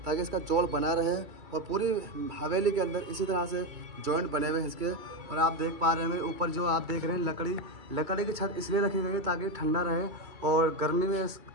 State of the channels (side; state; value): left; late; 2.3 ms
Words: ताकि इसका जोड़ बना रहे। और पूरी हवेली के अंदर इसी तरह से जॉइंट बने हुए हैं इसके। और आप देख पा रहे हैं ऊपर जो आप देख रहे हैं लकड़ी की छत इसलिए रखी गई है ताकि ठंडा रहे और गर्मी